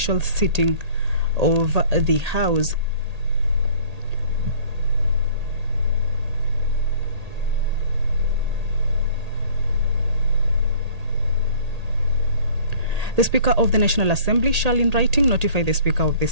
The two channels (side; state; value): left; late; 1.8 ms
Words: sitting of the House. The Speaker of the National Assembly shall in writing notify the Speaker of the